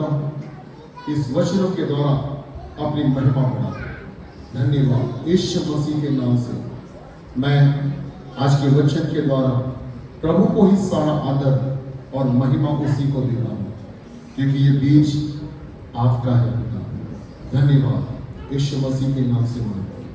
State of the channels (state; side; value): identical; both; correlation 1.00